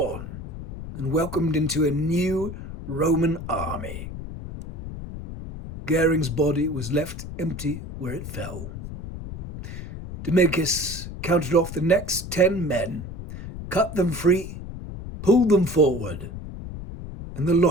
and welcomed into a new Roman army. Goering's body was left empty where it fell. Dominicus counted off the next 10 men, cut them free, pulled them forward, and the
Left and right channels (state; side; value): noise; left; rumble, 9 dB below the sound